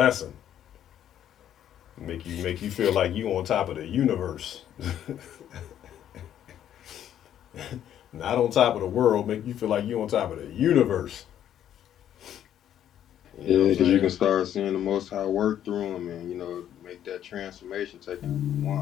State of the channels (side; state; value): right; quieter; 10.6 dB